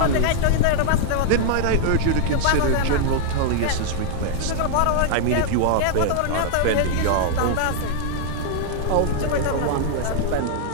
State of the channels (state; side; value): different; both; correlation -0.01